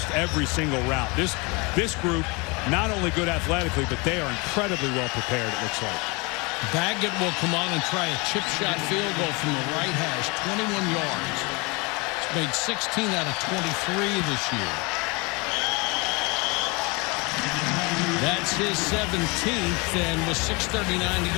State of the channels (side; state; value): right; quieter; 28.0 dB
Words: every single route. This group, not only good athletically, but they are incredibly well prepared, it looks like. Baggett will come on and try a chip shot field goal from the right hash, 21 yards. He's made 16 out of 23 this year. That's his 17th, and with 6:39 to